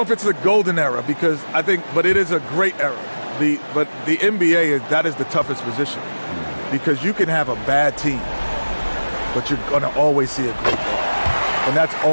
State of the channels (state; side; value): inverted; both; correlation -1.00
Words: if it's the golden era but it is a great era. But the NBA that is the toughest position because you can have a bad team, but you're going to always see a great guard. And that's